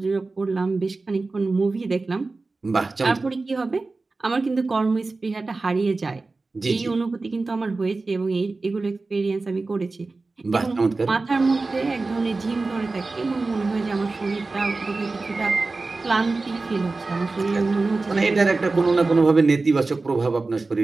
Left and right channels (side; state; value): left; quieter; 3.6 dB